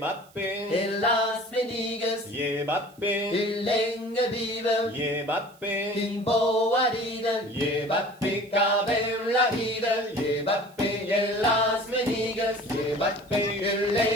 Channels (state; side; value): noise; right; hiss, 28 dB below the sound